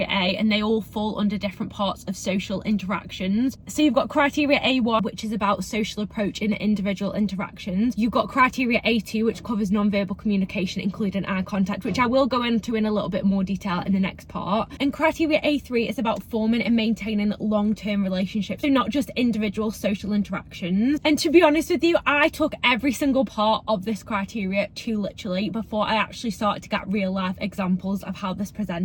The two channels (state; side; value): identical; both; correlation 1.00